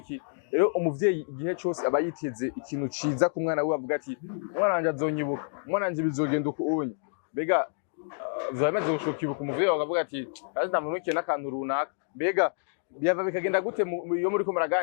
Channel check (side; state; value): right; silent; digital silence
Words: rero umuvyeyi igihe cyose aba yiteze ikintu ciza ku mwana we avuga ati umwana wanje azonyibuka umwana wanje bizogenda uko unye mbega vyamaze gushokibuka umuvyeyi akavuga ati azi ndamunukiye n'akantu runaka mbega byava bikagenda gute iyo muri ko